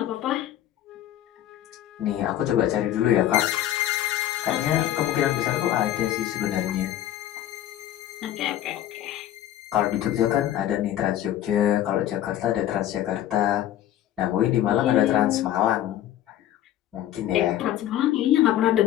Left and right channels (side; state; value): right; quieter; 12.3 dB